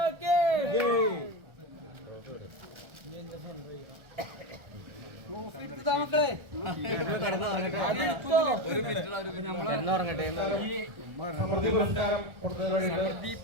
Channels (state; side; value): late; left; 1.4 ms